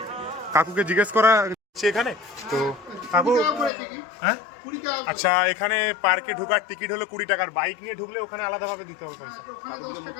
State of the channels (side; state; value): right; drops out; at 3.7 s